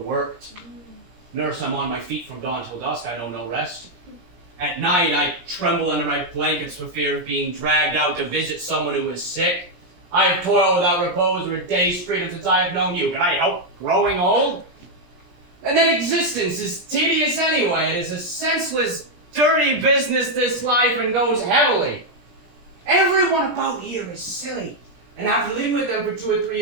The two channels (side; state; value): left; late; 17 ms